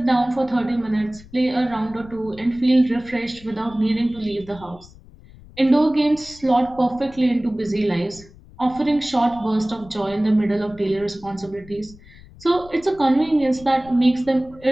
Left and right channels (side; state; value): left; noise; rumble, 22 dB below the sound